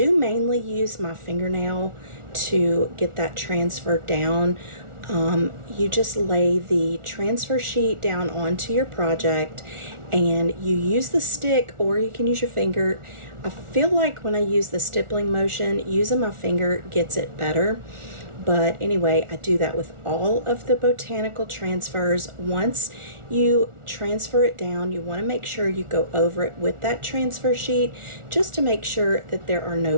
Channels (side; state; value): left; late; 1.4 ms